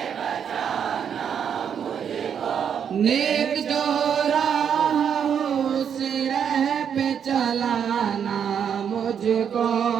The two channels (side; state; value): left; quieter; 7.9 dB